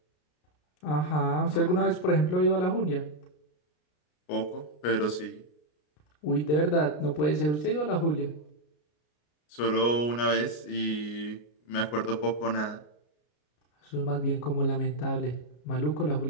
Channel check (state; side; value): late; right; 33 ms